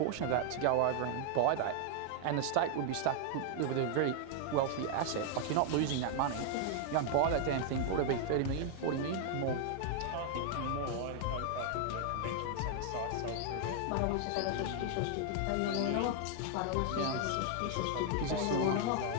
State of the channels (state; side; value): different; both; correlation 0.00